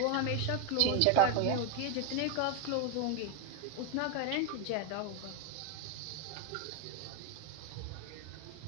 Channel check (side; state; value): both; different; correlation 0.01